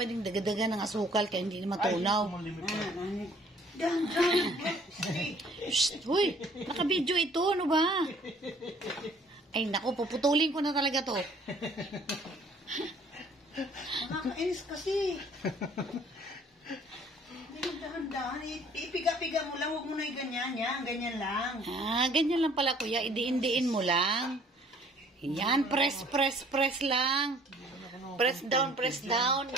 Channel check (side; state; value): both; normal; correlation 0.56